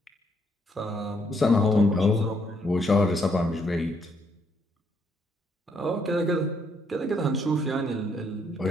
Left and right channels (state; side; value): normal; both; correlation 0.71